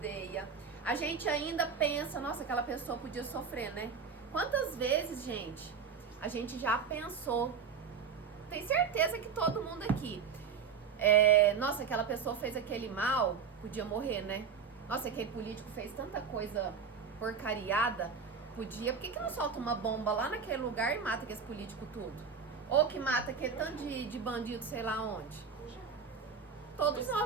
a gente ainda pensa, nossa, aquela pessoa podia sofrer, né? Quantas vezes, gente, a gente já pensou, tem certeza que todo mundo aqui, nossa, aquela pessoa fez aquele mal, podia morrer, né? Nossa, aquele político fez tanta coisa porcariada, podia, por que não solta uma bomba lá naquele lugar e mata aquele político tudo? Ou que mata aquele tanto de bandido, sei lá onde? Todos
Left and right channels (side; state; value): left; quieter; 6.1 dB